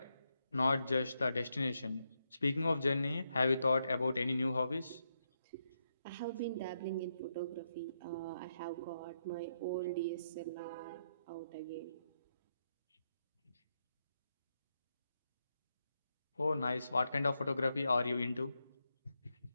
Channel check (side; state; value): both; inverted; correlation -0.82